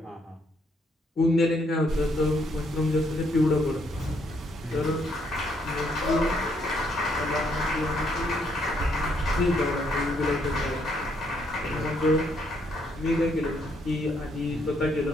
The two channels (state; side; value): normal; both; correlation 0.72